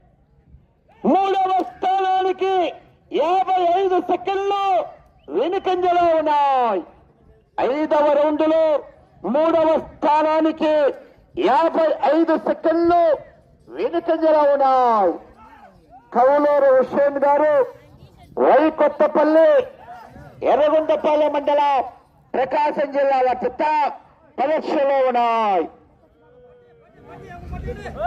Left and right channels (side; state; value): both; identical; correlation 1.00